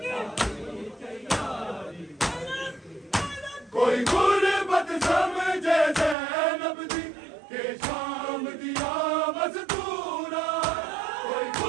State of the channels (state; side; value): drops out; left; at 6.2 s